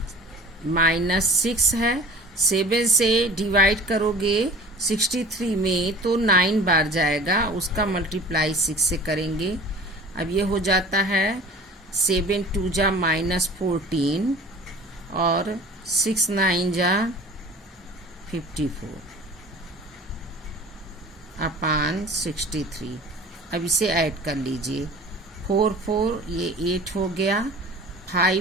-6 है, 7 से डिवाइड करोगे 63 में तो 9 बार जाएगा, उसका मल्टीप्लाई 6 से करेंगे। अब ये हो जाता है 7 2 जा -14 और 6 9 जा 54/63। अब इसे ऐड कर लीजिए। 4 4 ये 8 हो गया,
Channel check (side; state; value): both; normal; correlation 0.42